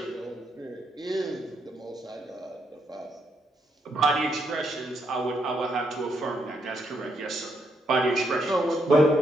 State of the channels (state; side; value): normal; both; correlation 0.77